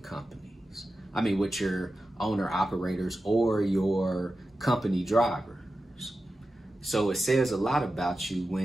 I mean, with your owner operators or your company drivers. So it says a lot about you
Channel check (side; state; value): both; normal; correlation 0.92